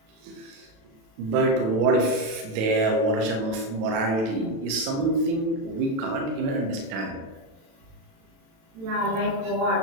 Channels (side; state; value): left; late; 36 ms